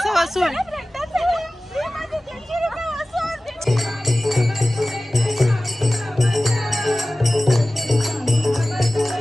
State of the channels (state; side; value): normal; both; correlation 0.97